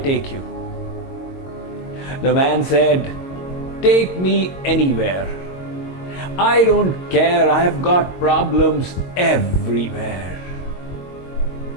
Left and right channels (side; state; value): right; late; 22 ms